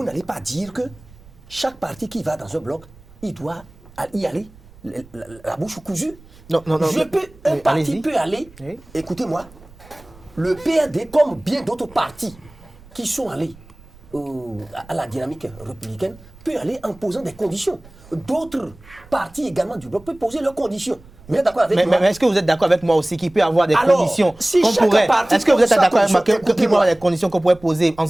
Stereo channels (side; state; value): right; noise; rumble, 24 dB below the sound